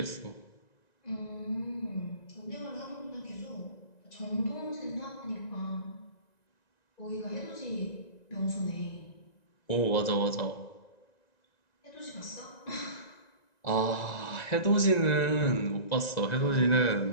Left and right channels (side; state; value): right; late; 1.9 ms